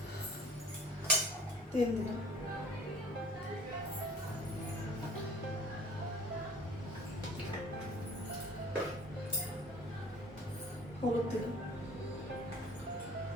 তেল দিলাম, হলুদ দিলাম,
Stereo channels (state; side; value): normal; both; correlation 0.49